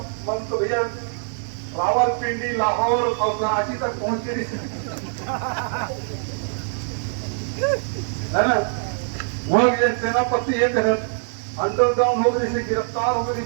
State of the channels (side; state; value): left; silent; 63 dB below the other